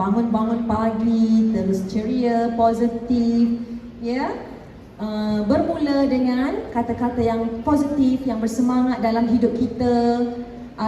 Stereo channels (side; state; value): both; identical; correlation 1.00